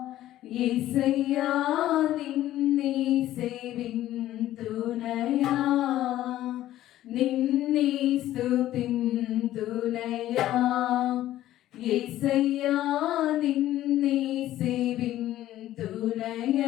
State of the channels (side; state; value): right; quieter; 13.8 dB